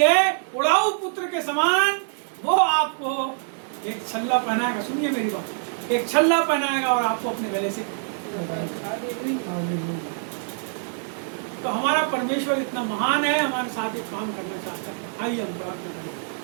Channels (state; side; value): silent; left; digital silence